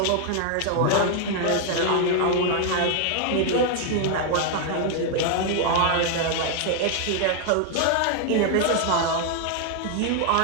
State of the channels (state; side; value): different; both; correlation 0.00